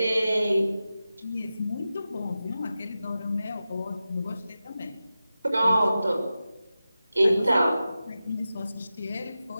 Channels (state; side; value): inverted; both; correlation -0.93